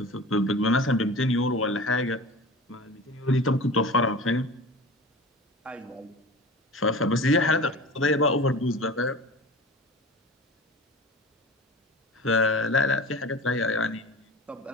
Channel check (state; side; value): normal; both; correlation 0.35